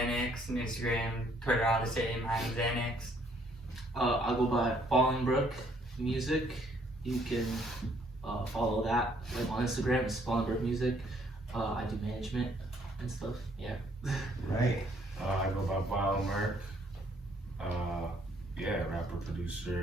And Instagram, Twitter, all the same. I am Xanax. I'll go by Fallingbrook Music. You can follow that on Instagram. It's Fallingbrook Music. I do management and stuff. Yeah. Right. I go by Vile Merc. Yeah, rapper,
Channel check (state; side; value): normal; both; correlation 0.65